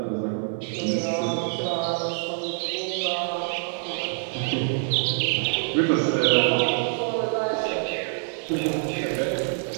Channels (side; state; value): left; silent; digital silence